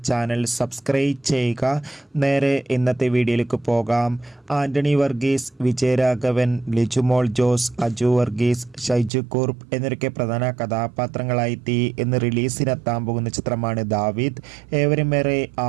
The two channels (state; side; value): drops out; left; at 9.1 s